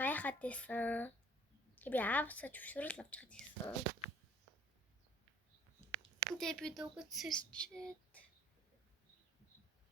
байсан. Би аавсаа зөвшөөрөл авч хаад байсан. Тэгээд би дуугад сэрчээд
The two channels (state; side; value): normal; both; correlation 0.56